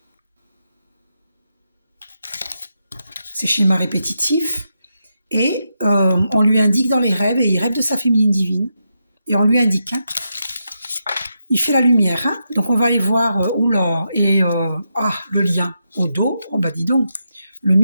ses schémas répétitifs. Et on lui indique dans les rêves, et il rêve de sa féminine divine. Et on lui indique, hein, il fait la lumière, hein. Donc on va aller voir, oula, et le lien au dos, oh bah dis donc,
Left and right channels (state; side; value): inverted; both; correlation -0.85